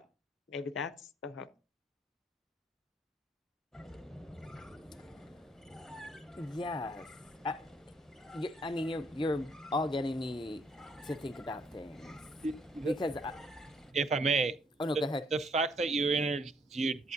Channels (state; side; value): normal; both; correlation 0.68